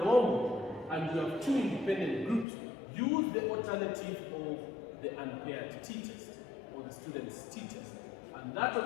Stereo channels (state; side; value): drops out; right; at 2.5 s